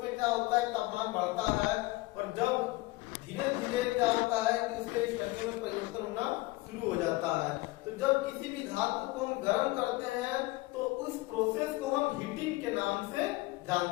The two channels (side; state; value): right; quieter; 21.0 dB